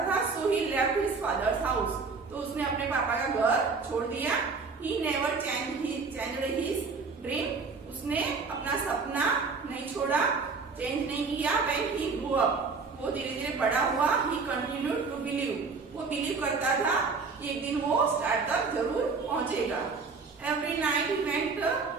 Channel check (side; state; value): left; quieter; 4.6 dB